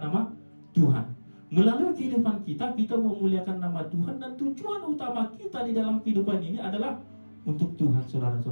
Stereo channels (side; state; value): both; inverted; correlation -1.00